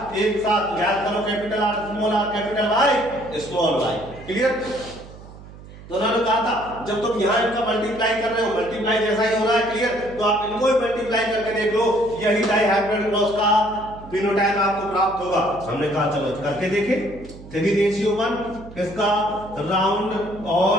एक साथ। याद करो, capital R small r, capital Y small y. Clear? तो उन्होंने कहा था जब तुम यहाँ इनका मल्टीप्लाई कर रहे हो, मल्टीप्लाई जैसा ही हो रहा है, क्लियर, तो आप इनको ही मल्टीप्लाई करके देख लो, यही डाइहाइब्रिड क्रॉस का फिनोटाइप आपको प्राप्त होगा। हमने कहा चलो करके देखें। 3:1 किसका? राउंड और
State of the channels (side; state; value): right; noise; hum, 17 dB below the sound